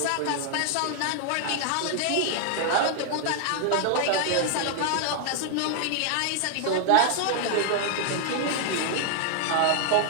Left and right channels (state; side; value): different; both; correlation 0.00